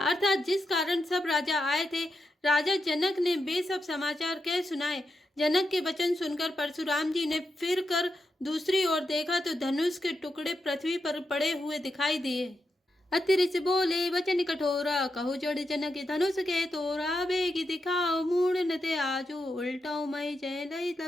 जिस कारण सब राजा आए थे राजा जनक ने वे सब समाचार कह सुनाए। जनक के वचन सुनकर परशुराम जी ने फिर कर दूसरी ओर देखा तो धनुष के टुकड़े पृथ्वी पर पड़े हुए दिखाई दिए। अतिरिच बोले वचन कठोरा कहु जड़ जनक धनुष के तोरा बेगी दिखाओ मूड नते आजो उल्टाओ मई जय लई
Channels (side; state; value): both; normal; correlation 0.86